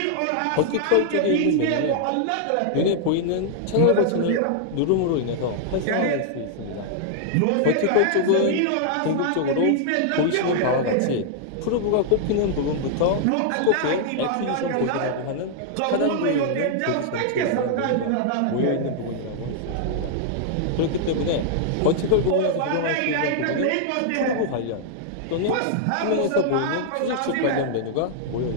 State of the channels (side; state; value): both; different; correlation -0.01